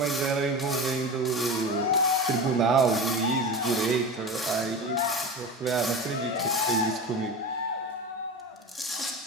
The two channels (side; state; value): both; normal; correlation 0.28